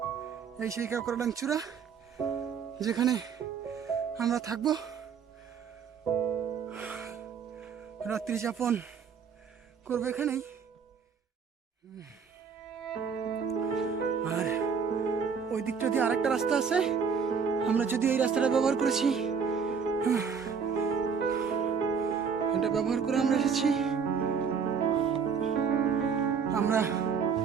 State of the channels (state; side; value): quieter; left; 6.3 dB